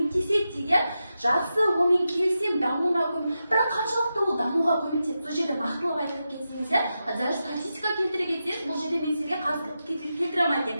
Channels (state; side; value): inverted; both; correlation -0.89